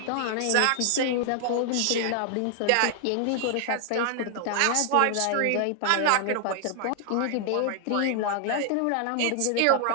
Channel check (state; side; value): different; both; correlation 0.00